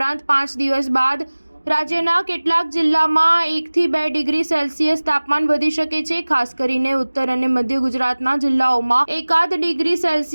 5 દિવસ બાદ રાજ્યના કેટલાક જિલ્લામાં 1 થી 2 ડિગ્રી સેલ્સિયસ તાપમાન વધી શકે છે। ખાસ કરીને ઉત્તર અને મધ્ય ગુજરાતના જિલ્લાઓમાં 1 ડિગ્રી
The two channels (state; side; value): inverted; both; correlation -1.00